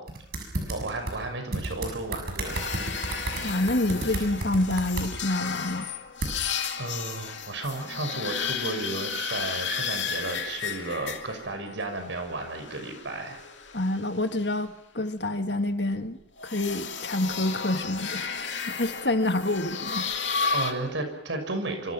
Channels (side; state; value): both; normal; correlation 0.28